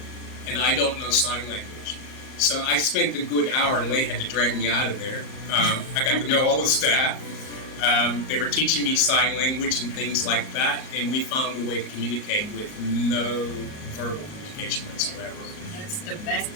And I don't know sign language. So I spent a good hour, and Leigh had to drag me out of there. I got to know all the staff. They were teaching me sign language and things like that, and we found a way to communicate with no verbal communication whatsoever. That's the best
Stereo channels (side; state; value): right; late; 38 ms